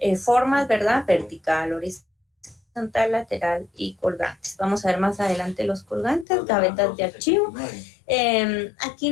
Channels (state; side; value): drops out; right; at 6.2 s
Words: formas, ¿verdad? Vertical, horizontal, lateral y colgantes. Vamos a ver más adelante los colgantes, gavetas de archivo. Aquí